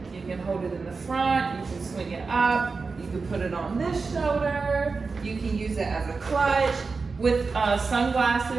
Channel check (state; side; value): quieter; left; 4.4 dB